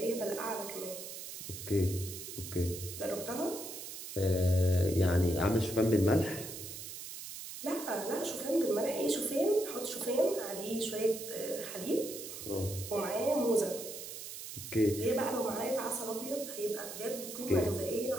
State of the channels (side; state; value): right; noise; hiss, 9 dB below the sound